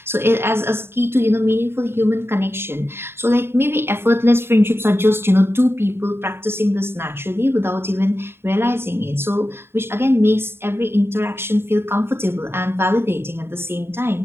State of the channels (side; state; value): left; late; 0.11 ms